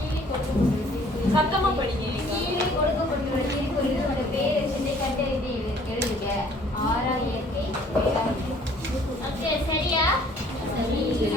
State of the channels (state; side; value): normal; both; correlation 0.57